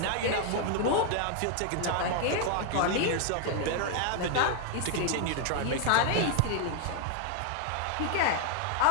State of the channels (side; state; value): both; different; correlation 0.00